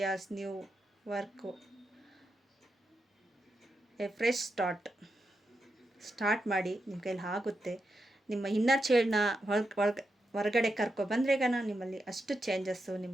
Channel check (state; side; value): normal; both; correlation 0.86